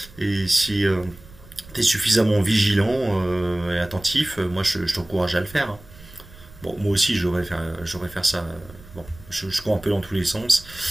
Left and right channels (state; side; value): noise; right; rumble, 20 dB below the sound